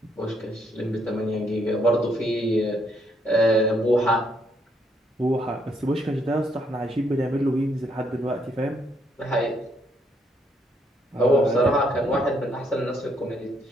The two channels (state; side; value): normal; both; correlation 0.72